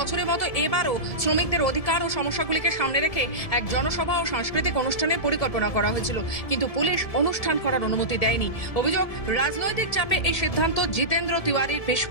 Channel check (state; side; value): late; right; 1.7 ms